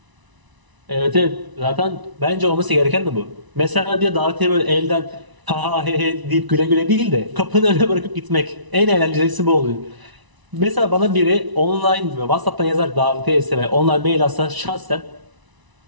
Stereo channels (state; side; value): late; left; 1.0 ms